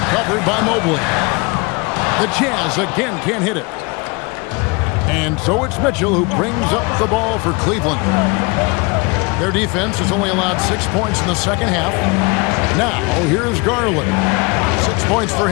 Covered by Mobley. The Jazz again can't hit it. And so it's Mitchell who brings up the ball for Cleveland. Their defense has only allowed 6 points in the second half. Now, here's Garland. 6 points for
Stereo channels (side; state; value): right; quieter; 27.8 dB